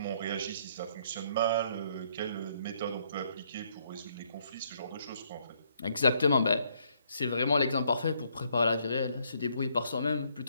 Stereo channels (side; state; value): both; inverted; correlation -0.70